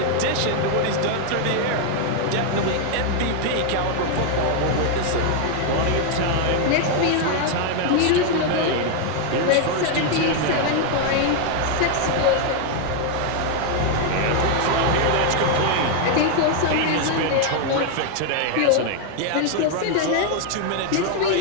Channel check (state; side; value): different; both; correlation 0.00